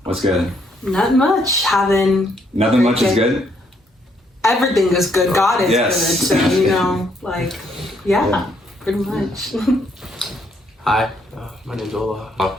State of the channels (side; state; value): both; normal; correlation 0.71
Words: What's good? Not much. Nothing much is good? Everything is good. God is Yes. good. So, pretty much. Hi, my name's Ola.